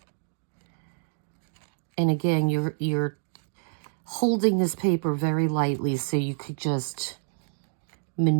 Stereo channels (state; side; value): silent; left; digital silence